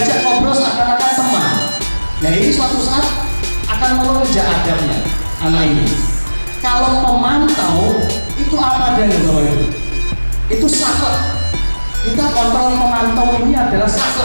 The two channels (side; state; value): both; inverted; correlation -1.00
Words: ngobrol seakan-akan teman. Nah, ini suatu saat akan melonjak adabnya anak ini. Kalau pemantau itu apa adanya, Bapak Ibu? Itu saklek. Kita kontrol pemantau ini adalah